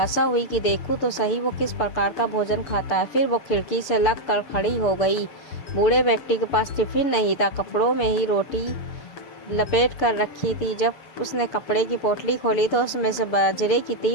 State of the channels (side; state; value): right; late; 7.0 ms